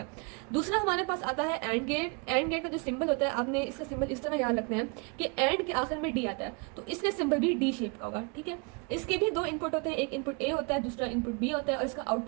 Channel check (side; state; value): left; quieter; 32.7 dB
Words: दूसरा हमारे पास आता है एंड गेट। एंड गेट का जो सिंबल होता है, आपने इसका सिंबल इस तरह याद रखना है कि एंड के आखिर में डी आता है, तो इसका सिंबल भी डी शेप का होगा। ठीक है, इसके भी दो इनपुट होते हैं, एक इनपुट ए होता है, दूसरा इनपुट बी होता है, और इसका